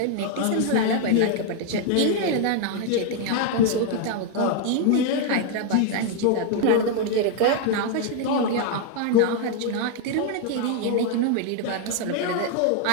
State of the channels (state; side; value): different; both; correlation 0.01